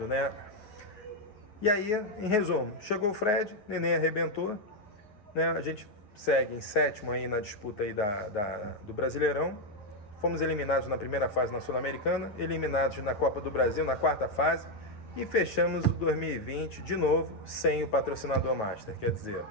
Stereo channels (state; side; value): late; right; 9.4 ms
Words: né? E aí, em resumo, chegou o Fred, Nenê arrebentou, né? A gente segue em sétimo aí na disputa aí do Brasileirão, fomos eliminados na primeira fase na Sul-Americana, eliminados na Copa do Brasil na quarta fase e fechamos o 2020 de novo sem o patrocinador Master, quer dizer,